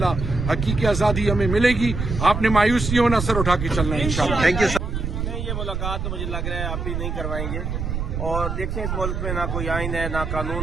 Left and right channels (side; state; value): right; noise; rumble, 3 dB below the sound